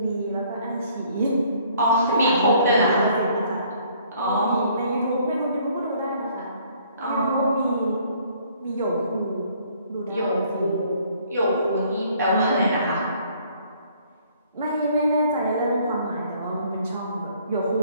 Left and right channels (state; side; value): inverted; both; correlation -0.61